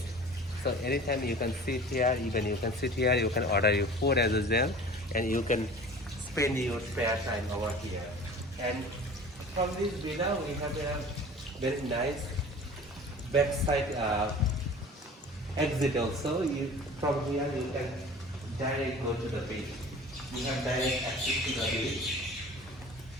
So anytime you can sit here, even you can sit here, you can order your food as well, and you can spend your spare time over here. And from this villa, we have a very nice backside exit also. From here, you can directly go to the beach. You have direct access to the beach.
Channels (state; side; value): normal; both; correlation 0.42